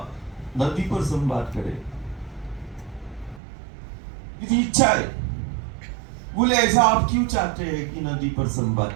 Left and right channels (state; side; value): drops out; left; at 3.4 s